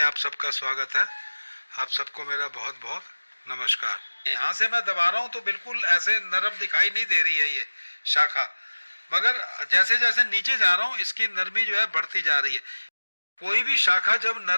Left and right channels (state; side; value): inverted; both; correlation -1.00